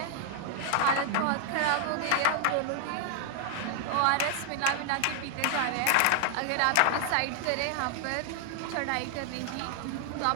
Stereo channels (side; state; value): both; different; correlation 0.00